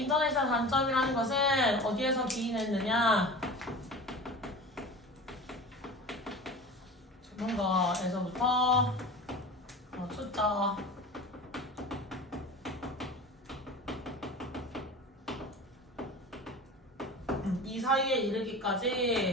인터넷의 단점이라는 것은 어디에서 기인했느냐? 전문가에서부터 초짜 이 사이에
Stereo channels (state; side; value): normal; both; correlation 0.34